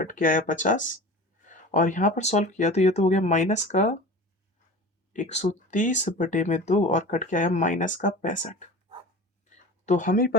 के आया 50, और यहाँ पर सॉल्व किया तो ये तो हो गया माइनस का 130 बटे में 2 और कट के आया माइनस का 65। तो हमें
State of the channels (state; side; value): normal; both; correlation 0.36